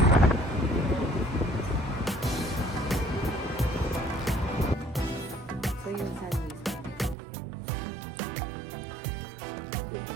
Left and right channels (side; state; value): left; drops out; at 7.2 s